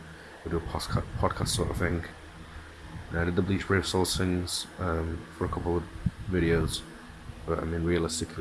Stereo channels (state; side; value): identical; both; correlation 1.00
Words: We do a podcast sort of thing. And I did the Bleach Brave Souls things for a couple of videos, but I mean,